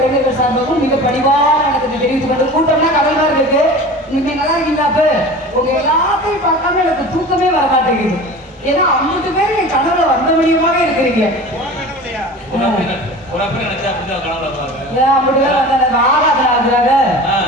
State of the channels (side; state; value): both; normal; correlation 0.37